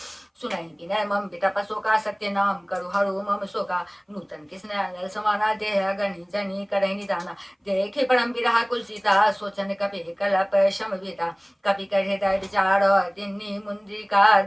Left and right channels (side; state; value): both; identical; correlation 1.00